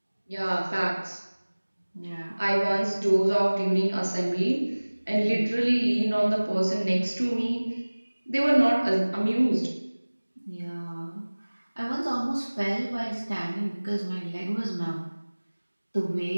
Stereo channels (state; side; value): inverted; both; correlation -1.00